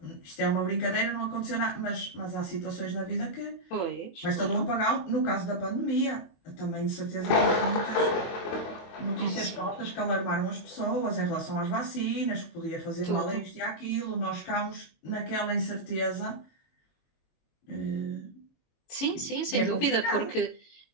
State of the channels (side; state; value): right; late; 22 ms